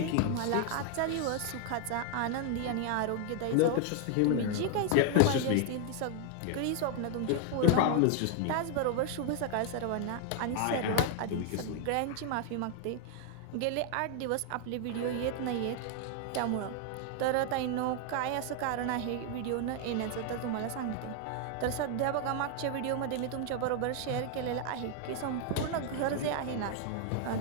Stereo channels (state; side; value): different; both; correlation 0.00